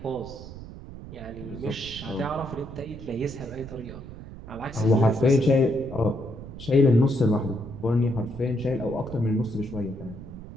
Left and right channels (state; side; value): noise; right; rumble, 13 dB below the sound